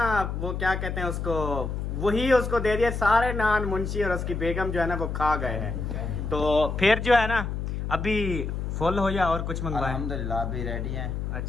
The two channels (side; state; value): left; noise; hum, 3 dB below the sound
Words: वो क्या कहते हैं उसको, वही उसको दे दिया। सारे नान मुंशी और उसकी बेगम जो है ना वो खा गए हैं। तो फिर जो है ना अभी फुल हो या और कुछ मंगवाए? अल्हम्दुलिल्लाह अभी रेडी हैं।